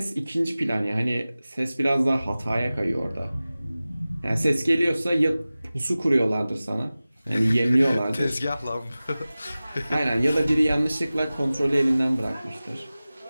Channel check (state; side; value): inverted; both; correlation -0.97